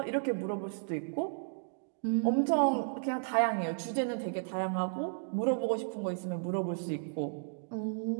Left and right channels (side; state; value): left; silent; digital silence